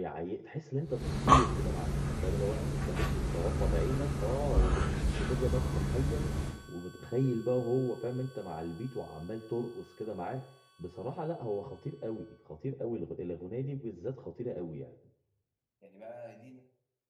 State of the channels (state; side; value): identical; both; correlation 1.00